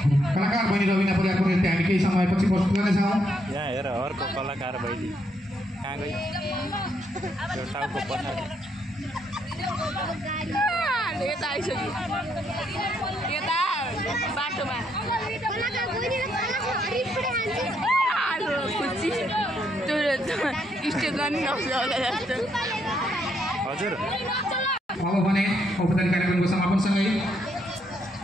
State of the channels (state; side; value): normal; both; correlation 0.75